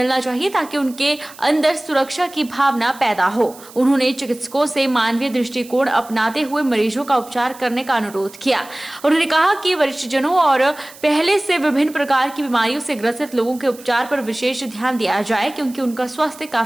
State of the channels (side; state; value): right; noise; hiss, 20 dB below the sound